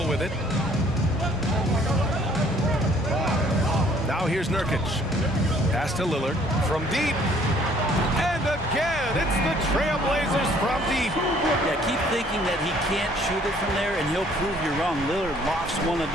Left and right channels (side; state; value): both; normal; correlation 0.60